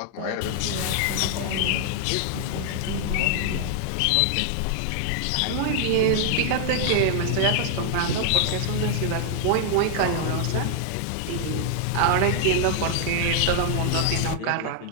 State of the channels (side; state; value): both; different; correlation 0.00